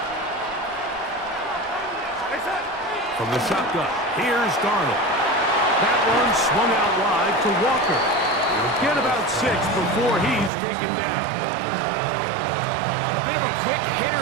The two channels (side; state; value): left; drops out; at 10.5 s